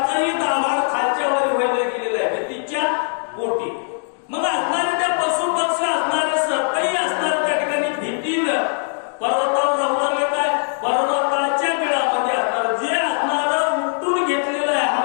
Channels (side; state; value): right; silent; 64 dB below the other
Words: दाभाड खालच्या वर व्हायला गेलेलं आहे भीतीच्या पोटी मग असणारे त्या पशु पक्षी असणारे सर्पही असणारे त्या ठिकाणी भीतीनं पर्वतावर जाऊ लागले काय पर्वताच्या बिळामध्ये असणार जे असणार उठून घेतलेलं आहे